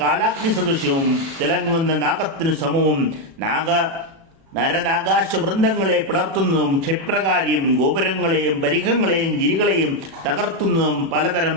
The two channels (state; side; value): late; left; 36 ms